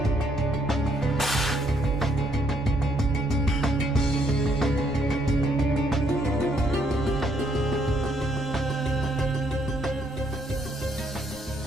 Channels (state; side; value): normal; both; correlation 0.70